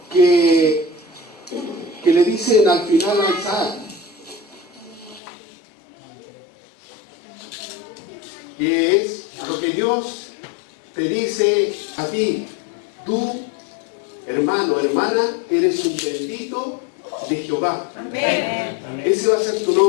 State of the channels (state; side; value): drops out; right; at 5.2 s